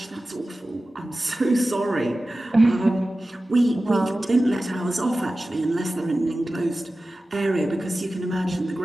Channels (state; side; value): normal; both; correlation 0.95